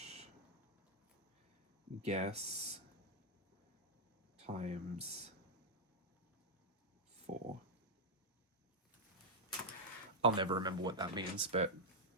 Guess times 4. I'll never remember what that means, but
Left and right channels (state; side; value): normal; both; correlation -0.03